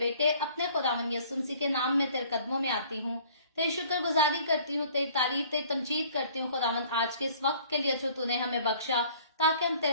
अपने खुदावंद यीशु मसीह के नाम में तेरे कदमों में आती हूँ, तेरी शुक्रगुजारी करती हूँ, तेरी तारीफ, तेरी तमजीद करती हूँ खुदावंद, आज के इस वक्त के लिए जो तूने हमें बख्शा, ताकि हम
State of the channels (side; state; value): both; inverted; correlation -0.55